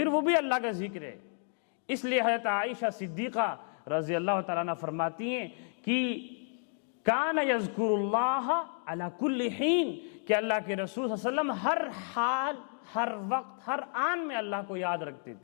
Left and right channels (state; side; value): silent; right; 57 dB below the other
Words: وہ بھی اللہ کا ذکر ہے۔ اس لیے حضرت عائشہ صدیقہ رضی اللہ تعالیٰ عنہ فرماتی ہیں کہ کان یذکر اللہ علی کل حین، کہ اللہ کے رسول صلی اللہ علیہ وسلم ہر حال، ہر وقت، ہر آن میں اللہ کو یاد رکھتے